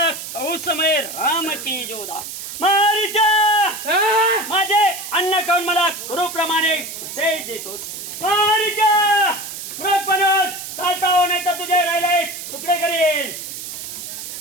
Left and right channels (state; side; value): noise; right; hiss, 9 dB below the sound